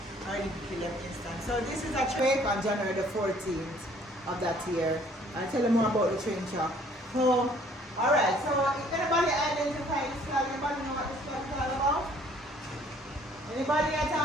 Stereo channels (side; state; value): both; normal; correlation 0.58